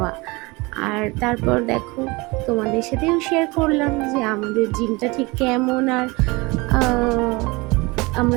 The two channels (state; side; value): quieter; left; 24.7 dB